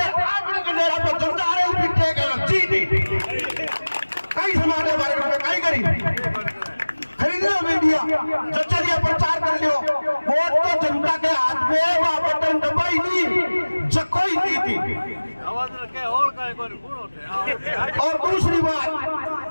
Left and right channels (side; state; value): both; inverted; correlation -1.00